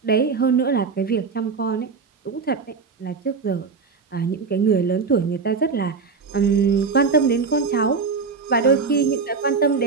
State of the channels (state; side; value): quieter; left; 5.0 dB